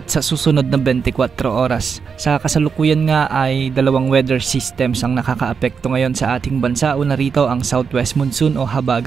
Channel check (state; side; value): quieter; left; 6.0 dB